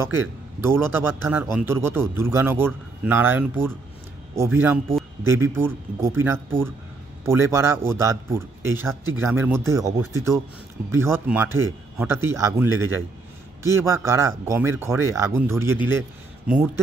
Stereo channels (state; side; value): quieter; left; 3.5 dB